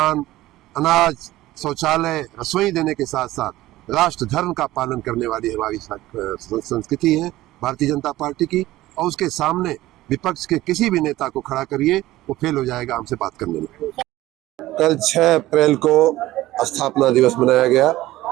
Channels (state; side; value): quieter; left; 16.5 dB